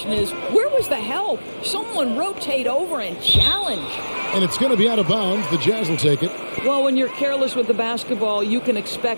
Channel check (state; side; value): inverted; both; correlation -1.00